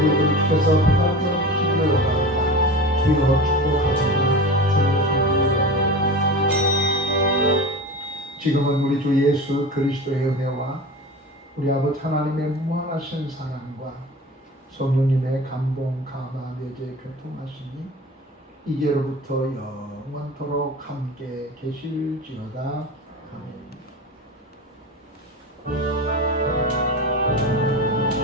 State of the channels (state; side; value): normal; both; correlation 0.31